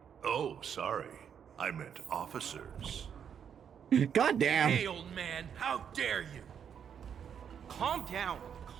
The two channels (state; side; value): quieter; left; 8.0 dB